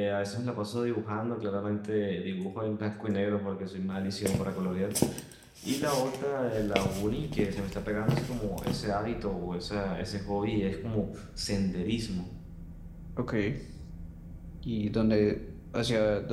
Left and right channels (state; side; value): identical; both; correlation 1.00